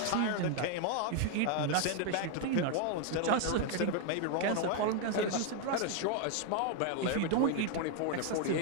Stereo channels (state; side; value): different; both; correlation 0.00